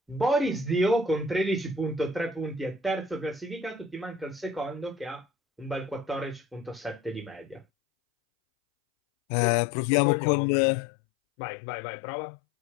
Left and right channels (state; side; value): drops out; right; at 7.7 s